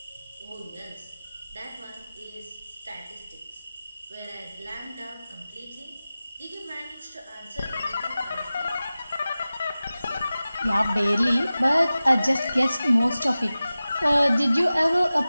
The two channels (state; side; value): inverted; both; correlation -0.96